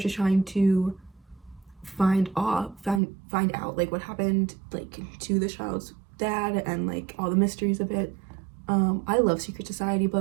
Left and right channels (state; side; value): drops out; left; at 3.0 s